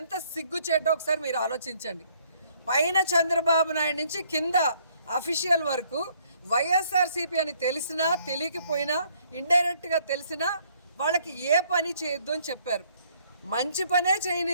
సిగ్గుచేటో ఒకసారి మీరు ఆలోచించండి. పైన చంద్రబాబు నాయుడు నుంచి కింద అఫీషియల్ వరకు వైఎస్ఆర్సీపీ అని తెలిసినా తెలియకపోయినా ఇండైరెక్ట్గా తెలిసినా వాళ్ళకి ఏ పని చేయొద్దు అని చెప్పారు. మంచి పనే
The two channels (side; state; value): both; inverted; correlation -0.65